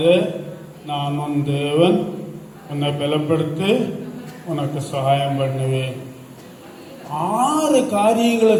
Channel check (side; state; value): both; identical; correlation 1.00